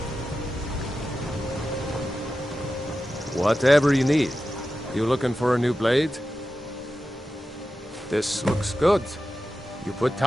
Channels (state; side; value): normal; both; correlation 0.92